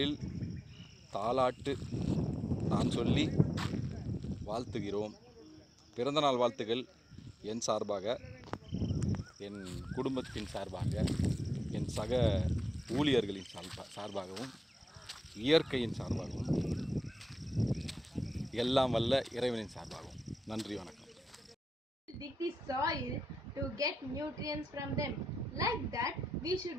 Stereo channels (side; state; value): both; normal; correlation 0.91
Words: தாலாட்டு நான் சொல்லி வாழ்த்துகிறோம். பிறந்தநாள் வாழ்த்துக்கள் என் சார்பாக, என் குடும்பத்தின் சார்பாக, என் சக ஊழியர்களின் சார்பாகவும், இயற்கையின் சார்பாகவும், எல்லாம் வல்ல இறைவனின் சார்பாகவும். நன்றி, வணக்கம். Dig the soil to get nutrients from them. Like that, we